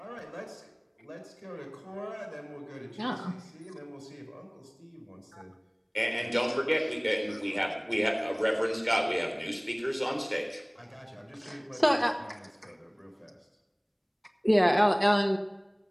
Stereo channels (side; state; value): both; identical; correlation 1.00